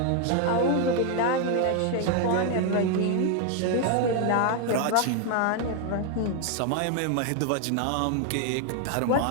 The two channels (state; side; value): different; both; correlation 0.01